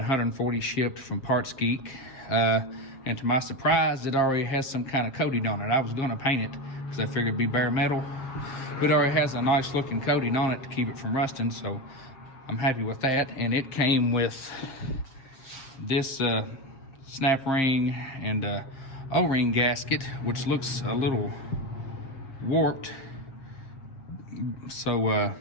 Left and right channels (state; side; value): late; right; 7.4 ms